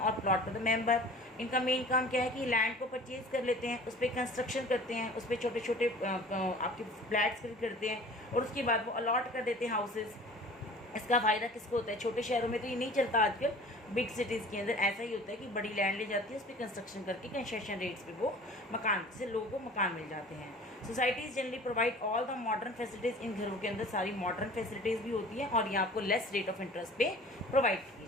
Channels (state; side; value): normal; both; correlation 0.45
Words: प्लॉट फॉर द मेंबर। इनका मेन काम क्या है कि लैंड को परचेज कर लेते हैं, उस पर कंस्ट्रक्शन करते हैं, उस पर छोटे छोटे आपके फ्लैट्स करते हैं और उसके बाद वो अलॉट कर देते हैं हाउसेस। इसका फ़ायदा किसको होता है, छोटे शहरों में तो ये नहीं चलता आजकल, बिग सिटीज़ के अंदर ऐसा ही होता है कि बड़ी लैंड ले जाती है, उस पर कंस्ट्रक्शन करके कंसेशन रेट्स पे वो मकान से लोगों को मकान मिल जाते हैं। Societies generally provide all the modern facilities. इन घरों के अंदर सारी मॉडर्न फैसिलिटीज़ भी होती हैं और ये आपको लेस रेट ऑफ इंटरेस्ट पे प्रोवाइड की